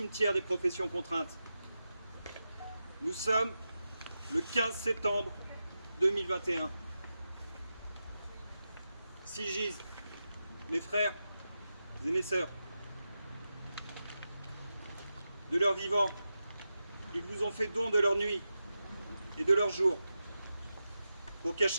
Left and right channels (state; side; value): inverted; both; correlation -0.90